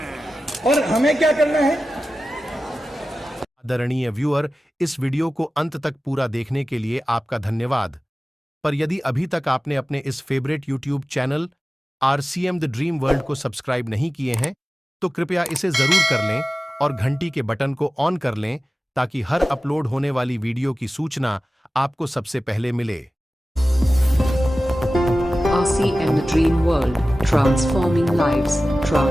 और हमें क्या करना है? आदरणीय व्यूअर, इस वीडियो को अंत तक पूरा देखने के लिए आपका धन्यवाद। पर यदि अभी तक आपने अपने इस favourite YouTube channel RCM the dream world को सब्सक्राइब नहीं किए हैं, तो कृपया इसे जरूर कर लें और घंटी के बटन को ऑन कर लें, ताकि हर अपलोड होने वाली वीडियो की सूचना आपको सबसे पहले मिले। RCM The Dream World, transforming lives,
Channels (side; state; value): both; normal; correlation 0.95